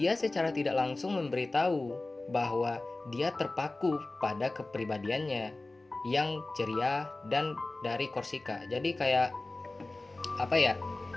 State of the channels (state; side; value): quieter; right; 3.0 dB